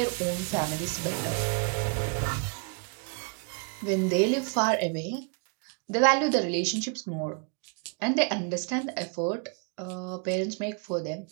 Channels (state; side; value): quieter; left; 36.6 dB